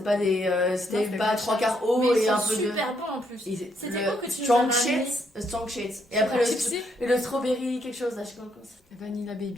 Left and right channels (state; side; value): normal; both; correlation 0.74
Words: pas des. C'était c'est pas des 3 quarts Mais eau ils et un sont peu de. super bons en plus. Et C'était le quoi que tu strong nous as ramené shit, strong shit. Et après Tipsy le strawberry, quelque chose là, je sais pas comment c'est. Vanilla